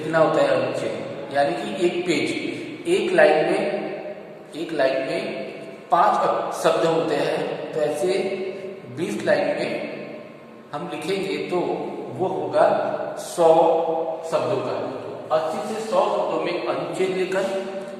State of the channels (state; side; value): identical; both; correlation 1.00